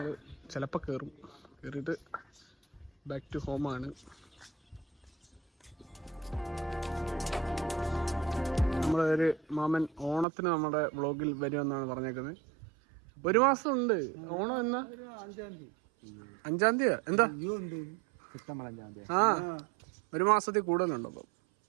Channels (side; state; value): left; drops out; at 10.2 s